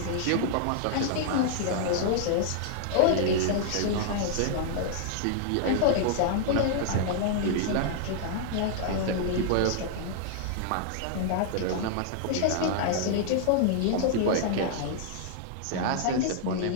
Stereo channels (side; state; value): both; different; correlation -0.01